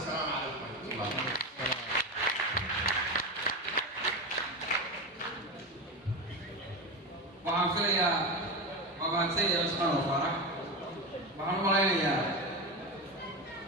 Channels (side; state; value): both; normal; correlation 0.19